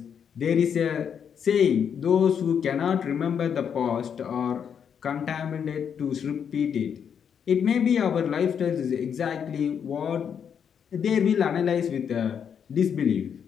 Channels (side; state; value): right; quieter; 7.7 dB